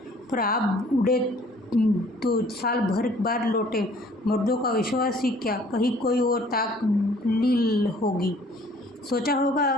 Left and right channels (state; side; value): normal; both; correlation 0.56